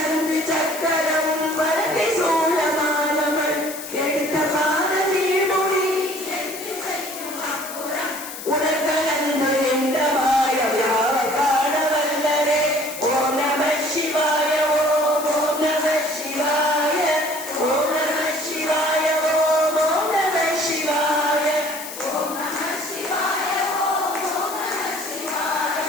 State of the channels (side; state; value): left; noise; hiss, 11 dB below the sound